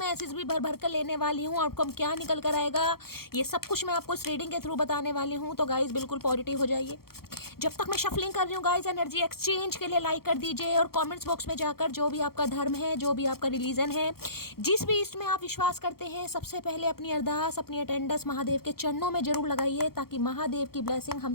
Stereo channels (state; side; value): late; right; 0.94 ms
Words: मैसेज भी भर भर कर लेने वाली हूँ, आउटकम क्या निकल कर आएगा ये सब कुछ मैं आपको इस रीडिंग के थ्रू बताने वाली हूँ। तो गाइस बिल्कुल पॉजिटिव हो जाइए। जब तक मैं शफलिंग कर रही हूँ गाइस, एनर्जी एक्सचेंज के लिए लाइक कर दीजिए और कमेंट्स बॉक्स में जाकर जो भी आपका धर्म है, जो भी आपका रिलीजन है, जिस भी ईस्ट में आप विश्वास करते हैं, सबसे पहले अपनी अरदास, अपनी अटेंडेंस महादेव के चरणों में जरूर लगाइए, ताकि महादेव की ब्लेसिंग हम